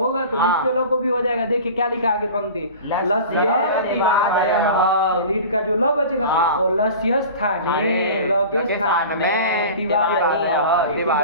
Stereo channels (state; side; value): inverted; both; correlation -0.37